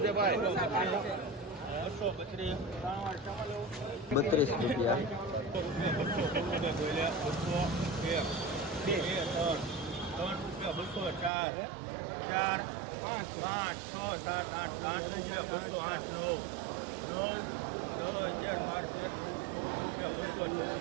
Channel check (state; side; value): drops out; left; at 11.3 s